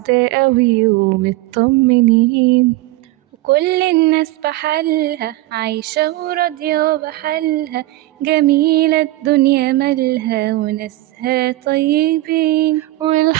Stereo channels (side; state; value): left; quieter; 17.9 dB